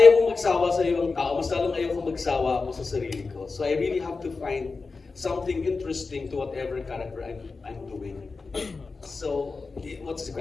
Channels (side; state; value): right; quieter; 4.2 dB